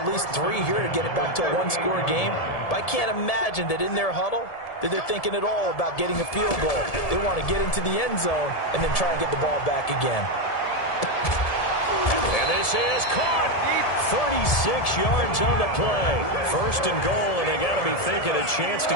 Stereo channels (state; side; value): late; right; 1.7 ms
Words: least 3 here to get it back to a 1-score game. But I can't imagine that in their huddle that they're thinking at all about getting a field goal. They want to get into the end zone and then try and get the ball back again. And this is caught. 36 yards on the play. First and goal, and they got to be thinking a chance to